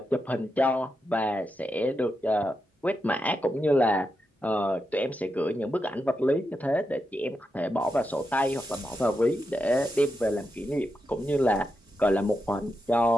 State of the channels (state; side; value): normal; both; correlation 0.87